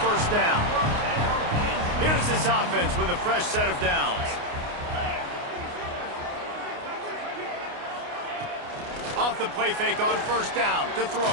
down. Here's this offense with a fresh set of downs. Off the play fake on first down to throw.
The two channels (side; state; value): left; late; 29 ms